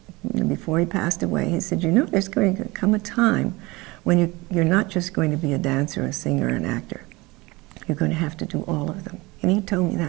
before he passed away, he said, you know, there's going to come a time when you're not just going to be a dancer, a singer, an actor. You're going to have to do all of them. And he told me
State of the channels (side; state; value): left; quieter; 23.0 dB